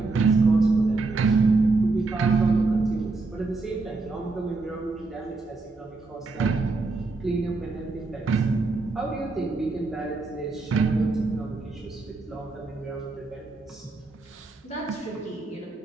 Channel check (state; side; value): quieter; left; 3.6 dB